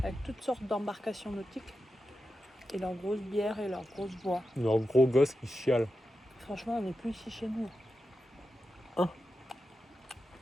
avec toutes sortes d'embarcations nautiques. Et leurs grosses bières et leurs grosses bois. Leurs gros gosses qui chialent. Franchement, on n'est plus ici chez nous. Hein?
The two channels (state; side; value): normal; both; correlation 0.90